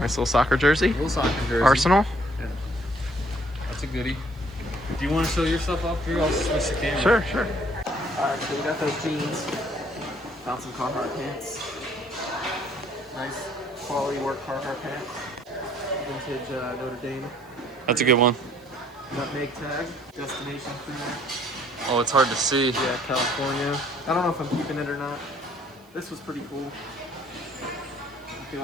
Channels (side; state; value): right; noise; hiss, 30 dB below the sound